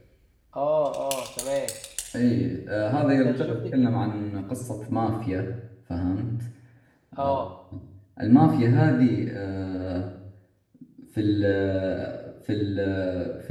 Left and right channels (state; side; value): identical; both; correlation 1.00